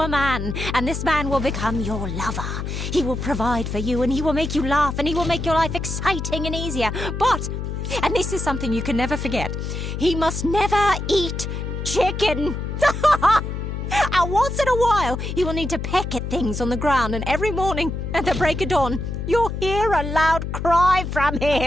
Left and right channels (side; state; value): left; noise; hum, 4 dB below the sound